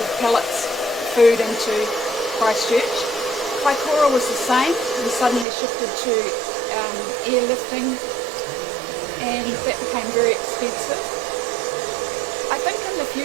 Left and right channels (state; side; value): drops out; left; at 5.5 s